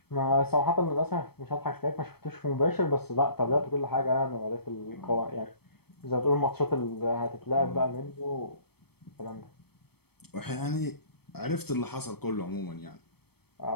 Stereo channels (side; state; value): right; late; 0.97 ms